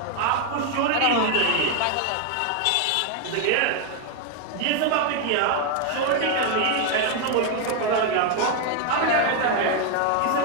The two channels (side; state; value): both; different; correlation 0.01